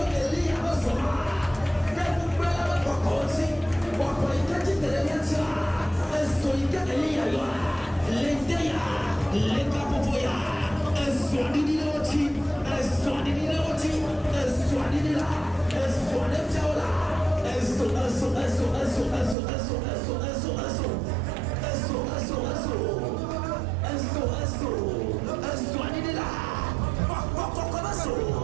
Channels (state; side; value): drops out; left; at 19.4 s